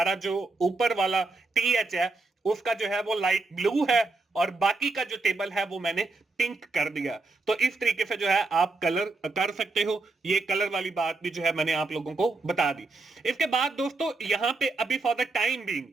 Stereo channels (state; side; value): quieter; left; 3.5 dB